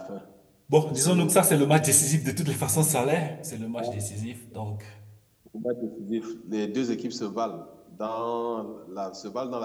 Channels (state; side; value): identical; both; correlation 1.00